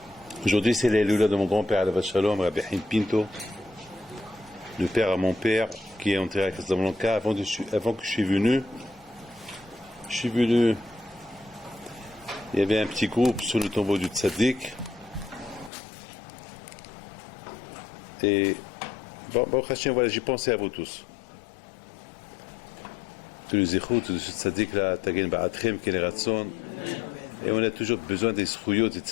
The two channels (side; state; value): right; drops out; at 15.7 s